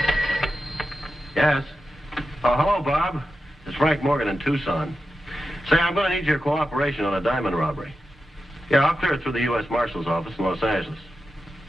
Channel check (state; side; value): normal; both; correlation 0.90